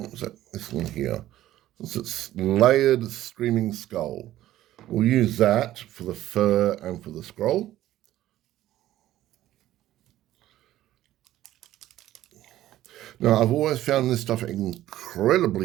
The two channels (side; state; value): left; quieter; 14.0 dB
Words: was that? This one here. It's layered screaming skull. We'll use that for the fur and for the scroll. Now, I've always found this stuff